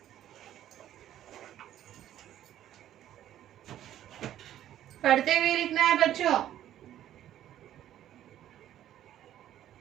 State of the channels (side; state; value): left; quieter; 11.9 dB